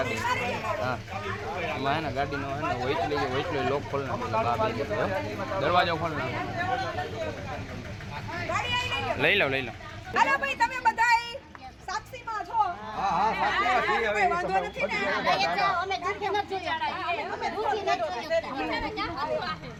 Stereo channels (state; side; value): identical; both; correlation 1.00